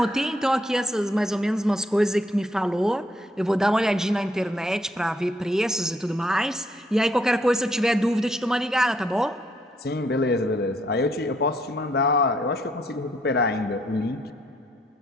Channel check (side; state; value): both; normal; correlation 0.72